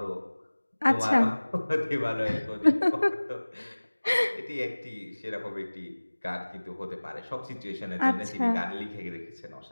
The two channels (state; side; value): inverted; both; correlation -1.00